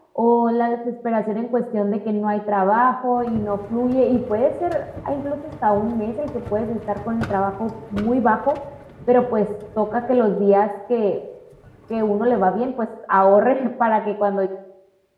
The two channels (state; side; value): identical; both; correlation 1.00